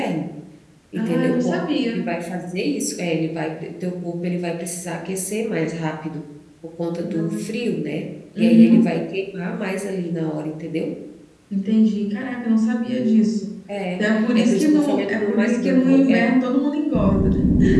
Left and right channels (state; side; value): identical; both; correlation 1.00